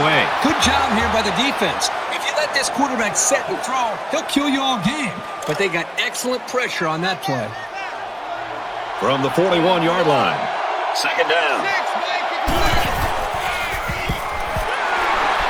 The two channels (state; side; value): identical; both; correlation 1.00